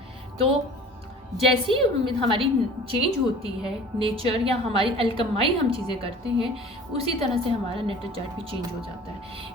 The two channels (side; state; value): both; normal; correlation 0.44